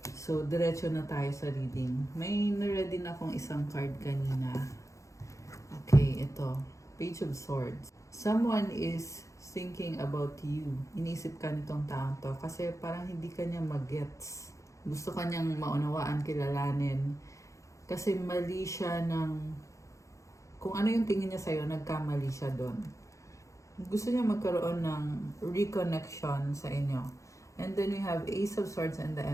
So, diretso na tayo sa reading. May na-ready na akong isang card kanina. Okay, ito. Page of Swords. Someone is thinking about you. Inisip ka nitong taong to kasi parang hindi ka niya mag-gets. Gusto ka niyang maunawaan, kilalanin. Kasi mali siya ng... Kung ano yung tingin niya sa'yo, nagkamali siya doon. Gusto niya magkaroon ng reconnection sa inyo. And then we have Ace of Swords and the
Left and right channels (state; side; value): late; right; 0.15 ms